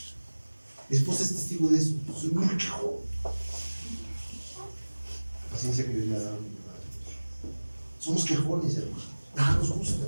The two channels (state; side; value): inverted; both; correlation -1.00